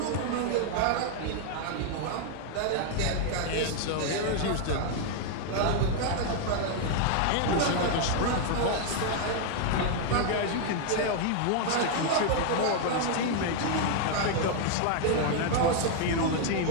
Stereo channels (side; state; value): both; different; correlation 0.00